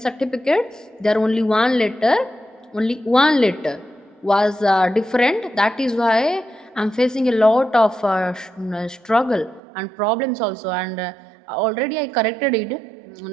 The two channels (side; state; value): left; drops out; at 9.6 s